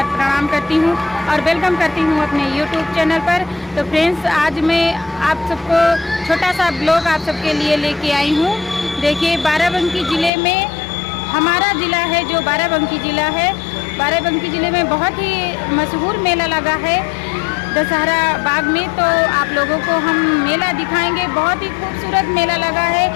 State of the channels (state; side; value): drops out; right; at 10.3 s